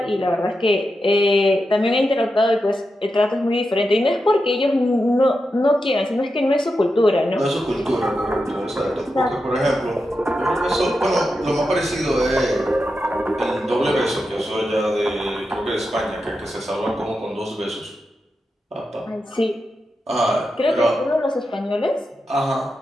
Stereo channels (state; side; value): normal; both; correlation 0.88